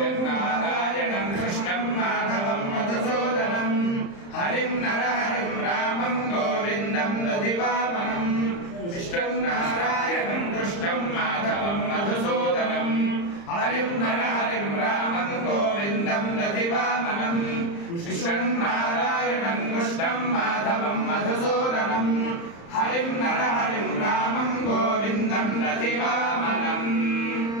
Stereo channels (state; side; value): late; right; 35 ms